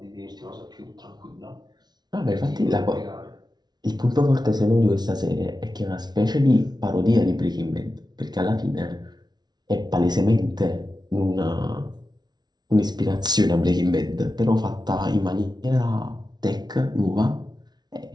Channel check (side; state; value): left; late; 0.19 ms